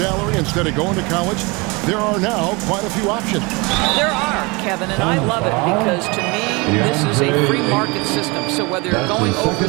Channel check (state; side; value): quieter; left; 26.9 dB